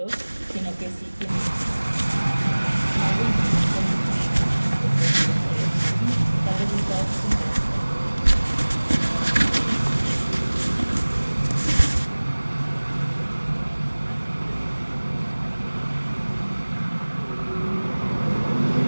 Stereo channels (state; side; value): inverted; both; correlation -1.00